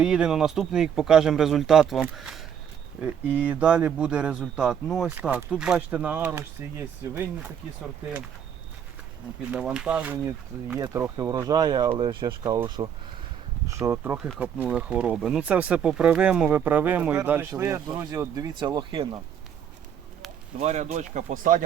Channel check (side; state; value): left; quieter; 8.5 dB